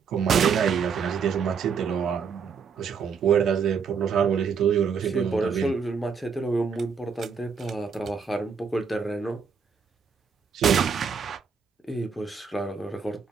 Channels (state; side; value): quieter; left; 6.1 dB